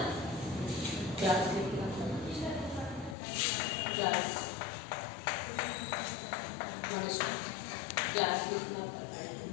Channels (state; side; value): drops out; right; at 3.2 s